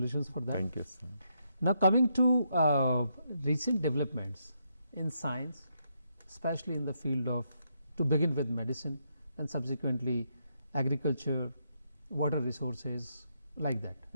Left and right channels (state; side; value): inverted; both; correlation -0.78